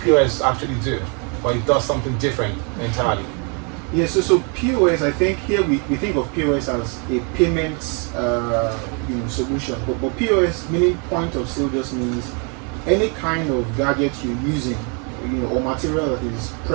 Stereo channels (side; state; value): left; quieter; 36.5 dB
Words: POS actually do? Or it does something different entirely? Yeah, so POS, I think here we think of POS as a payments solution. But POS, meaning point of sale, just means any kind of gadget you're using, or material that is